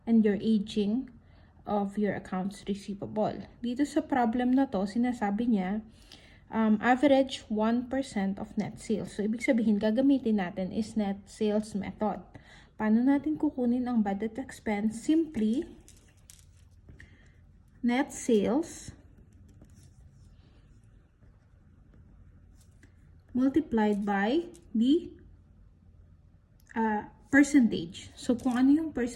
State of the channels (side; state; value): both; identical; correlation 1.00